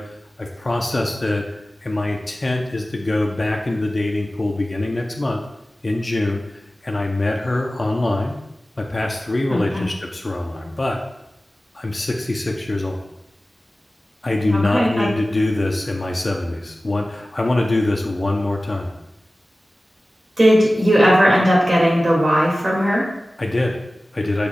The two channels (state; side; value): normal; both; correlation 0.96